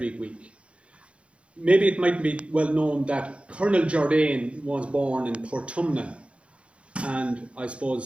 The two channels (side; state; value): left; late; 0.060 ms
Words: week. Maybe it might be well known that Colonel Jardine was born in Portumna, and I